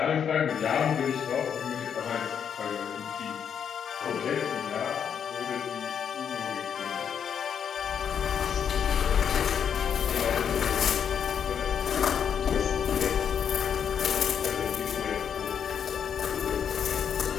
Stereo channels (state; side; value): quieter; right; 7.9 dB